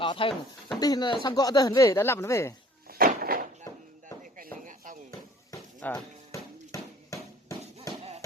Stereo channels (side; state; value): both; normal; correlation 0.53